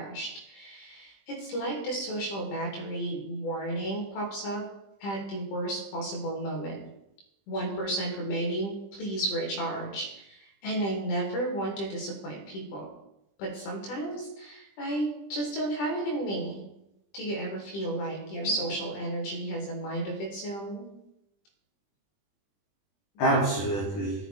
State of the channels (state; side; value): late; right; 20 ms